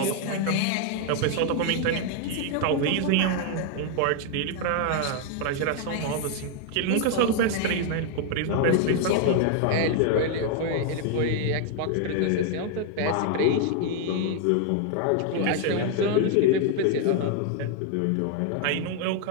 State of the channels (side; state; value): both; different; correlation 0.00